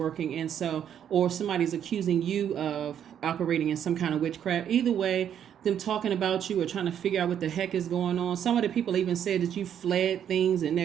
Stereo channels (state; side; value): quieter; left; 9.3 dB